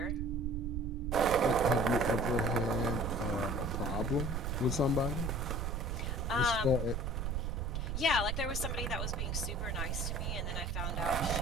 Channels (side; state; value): right; noise; rumble, 1 dB below the sound